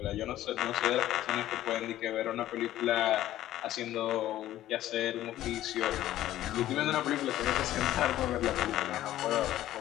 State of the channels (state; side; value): quieter; right; 13.7 dB